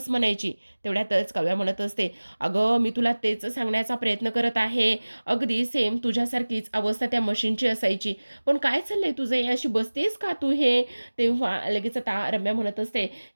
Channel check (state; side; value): inverted; both; correlation -1.00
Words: म्हणायची?" तेवढ्यातच काव्या म्हणत असते, "अगं, मी तुला तेच सांगण्याचा प्रयत्न करत आहे. अगदी सेम तुझ्यासारखीच अवस्था त्या म्हशींची असायची. पण काय चाललंय तुझं हे? अशी बसतेस का तू हे?" तेव्हा लगेच आता रम्या म्हणत असते,